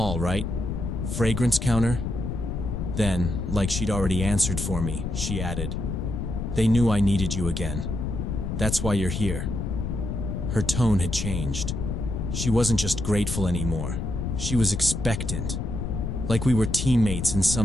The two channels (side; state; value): left; noise; rumble, 3 dB below the sound